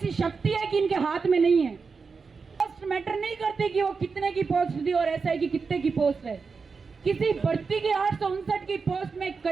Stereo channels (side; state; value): left; quieter; 5.0 dB